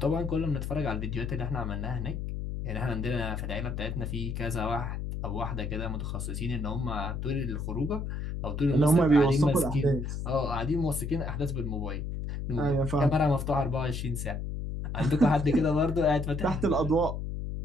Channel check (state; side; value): noise; left; hum, 4 dB below the sound